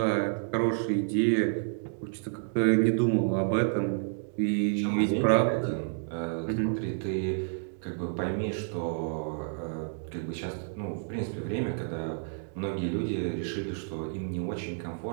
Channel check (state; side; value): silent; left; digital silence